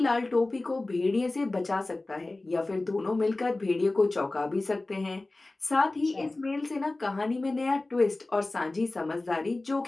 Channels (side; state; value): right; quieter; 3.0 dB